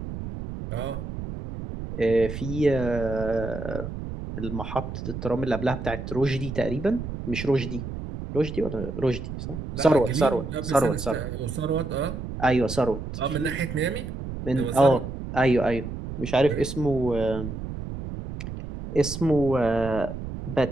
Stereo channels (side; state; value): right; noise; rumble, 7 dB below the sound